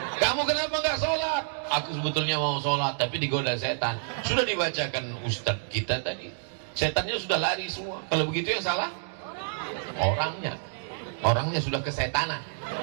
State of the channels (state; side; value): silent; left; digital silence